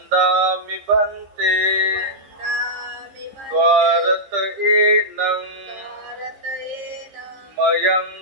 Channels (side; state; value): left; late; 15 ms